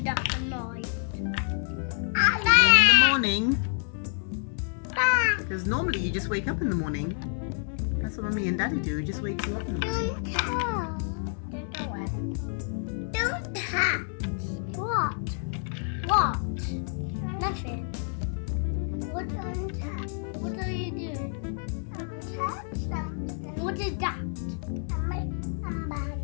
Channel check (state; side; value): silent; right; 59 dB below the other